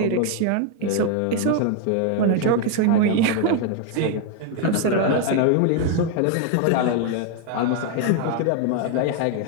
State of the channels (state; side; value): different; both; correlation 0.01